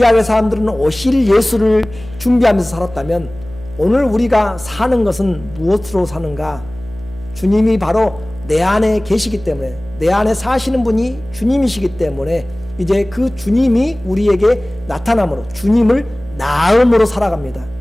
사람들은 오실 예수를 준비하면서 살았다면 오늘 우리가 사는 것은 무엇으로 사는가? 주님이 바로 내 안에 계시기 때문에, 내 안에 사시는 분이 주님이시기 때문에 이제 그 주님이 우리에게 나타남으로 주님을 나음으로 살아갑니다.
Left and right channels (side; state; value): right; noise; hum, 17 dB below the sound